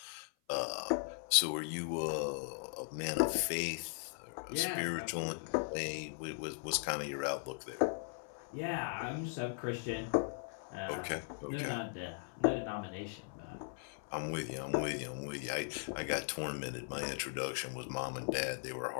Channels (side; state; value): right; silent; 52 dB below the other